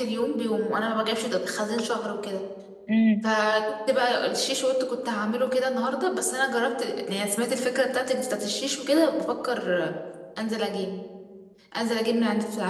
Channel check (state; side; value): identical; both; correlation 1.00